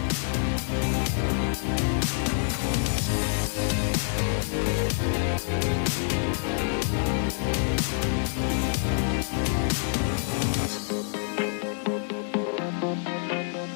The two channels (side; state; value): right; silent; digital silence